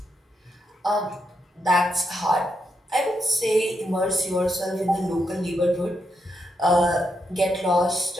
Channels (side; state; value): both; normal; correlation 0.82